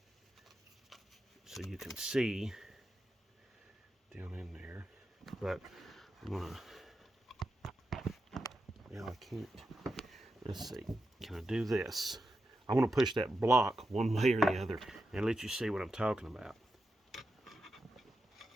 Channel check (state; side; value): normal; both; correlation 0.88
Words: so you can see down in there. But I'm gonna, yeah, I can't. Let's see, can I do this? I want to push that block one way or the other and let you see what I'm talking about.